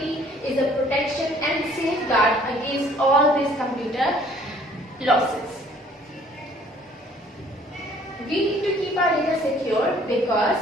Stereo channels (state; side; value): normal; both; correlation 0.57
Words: the protection and safeguard against all these computer losses. We need to keep our data secure because